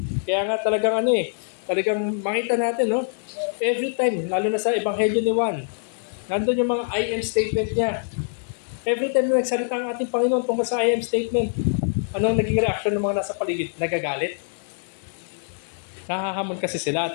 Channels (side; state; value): right; silent; 62 dB below the other